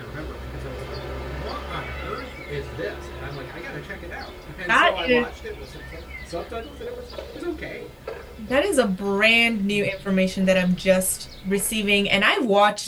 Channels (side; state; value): both; identical; correlation 1.00